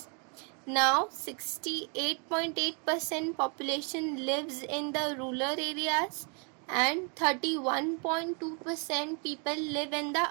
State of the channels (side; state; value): left; quieter; 37.4 dB